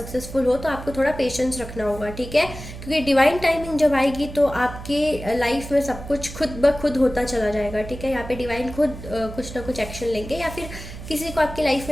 हो, तो आपको थोड़ा पेशेंस रखना होगा, ठीक है। क्योंकि डिवाइन टाइमिंग जब आएगी तो आपके लाइफ में सब कुछ खुद ब खुद होता चला जाएगा, ठीक है। यहाँ पे डिवाइन खुद कुछ ना कुछ एक्शन लेंगे या फिर किसी को आपकी लाइफ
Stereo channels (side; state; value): right; noise; hum, 12 dB below the sound